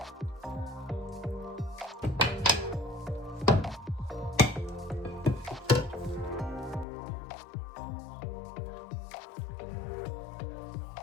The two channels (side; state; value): right; drops out; at 6.9 s